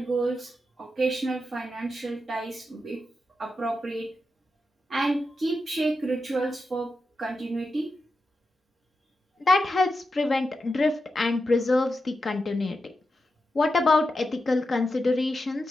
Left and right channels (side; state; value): both; normal; correlation 0.88